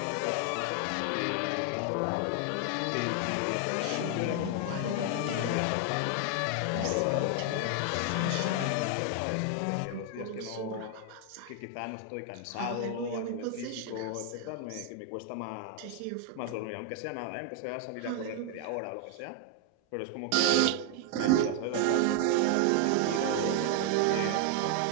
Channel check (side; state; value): both; different; correlation 0.00